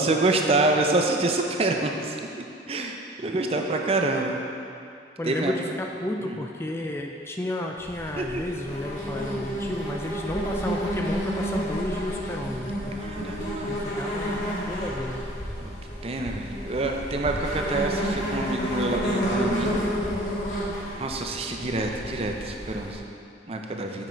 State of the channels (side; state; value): both; normal; correlation 0.48